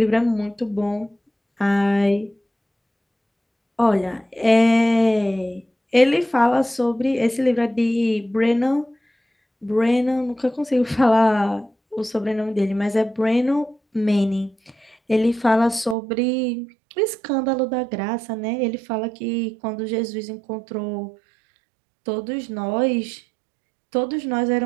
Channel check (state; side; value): drops out; left; at 16.0 s